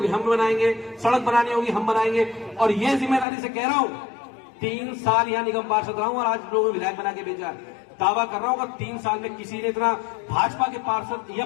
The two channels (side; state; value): right; drops out; at 3.2 s